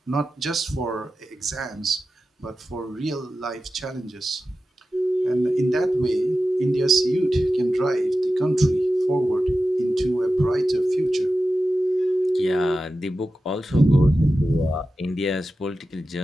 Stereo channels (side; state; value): both; normal; correlation 0.93